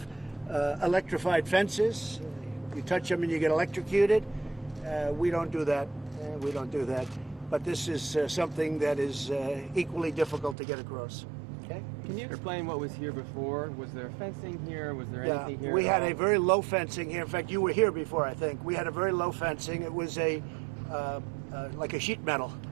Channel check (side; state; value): left; drops out; at 10.6 s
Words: electrified fences. You touch them and you get electrocuted. We don't do that. We don't do that. But this is something that is equally difficult to get across. Okay? Can you explain what was here before? Was there fencing here? Was there anything here? We had a very low fencing here. In fact, you were here before, I think. We had a very low fencing. It was like a sheet metal,